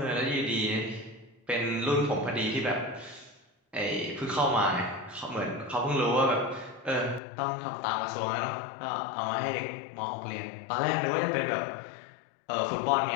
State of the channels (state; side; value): drops out; right; at 7.2 s